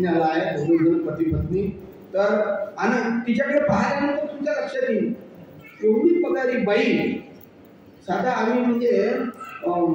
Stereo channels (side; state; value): both; identical; correlation 1.00